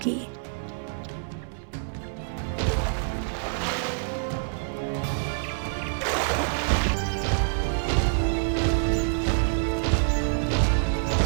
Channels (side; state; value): left; silent; 61 dB below the other